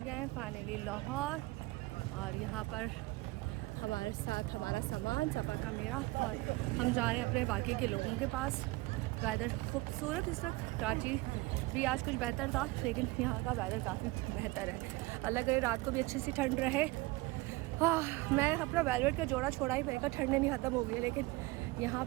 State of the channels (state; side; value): quieter; left; 21.8 dB